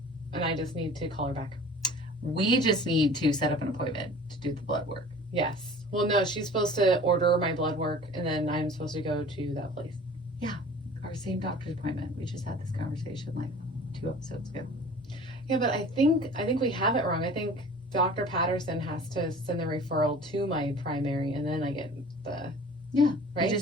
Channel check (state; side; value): normal; both; correlation 0.44